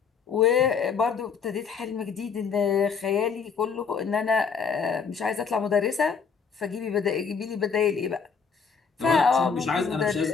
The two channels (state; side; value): quieter; right; 5.9 dB